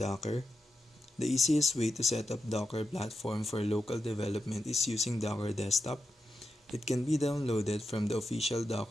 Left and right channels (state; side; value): normal; both; correlation 0.88